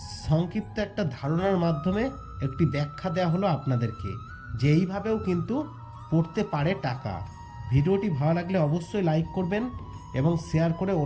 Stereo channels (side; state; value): both; identical; correlation 1.00